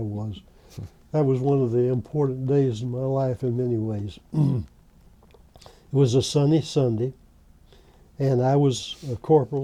That was one of the important days in my life in many ways. It was a sunny Sunday, and I was a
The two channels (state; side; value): identical; both; correlation 1.00